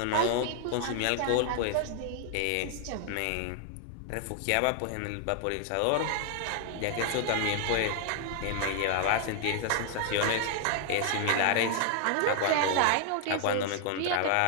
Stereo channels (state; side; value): different; both; correlation 0.00